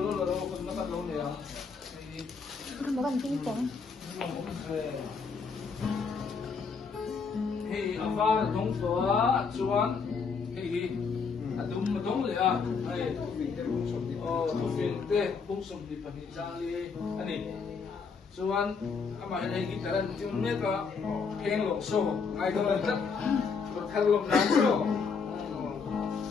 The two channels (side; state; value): right; quieter; 5.3 dB